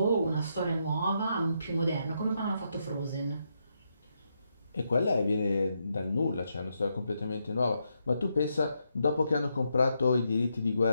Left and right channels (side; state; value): both; inverted; correlation -0.81